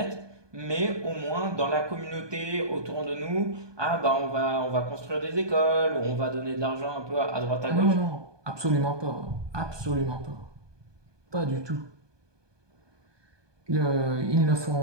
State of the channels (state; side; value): late; left; 1.2 ms